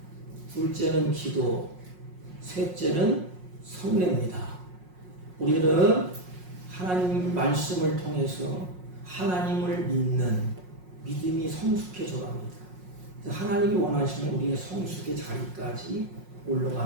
둘째는 기도, 셋째는 성례입니다. 우리는 하나님 말씀을 통해서 하나님을 믿는 믿음이 성숙해져 갑니다. 하나님이 원하시는 우리의 성숙의 자리까지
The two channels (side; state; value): left; late; 5.5 ms